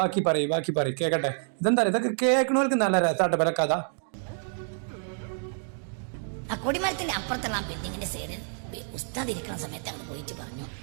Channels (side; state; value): left; silent; 59 dB below the other